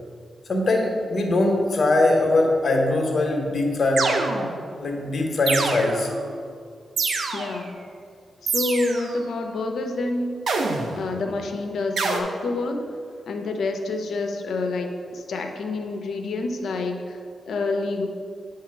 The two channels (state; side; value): normal; both; correlation 0.84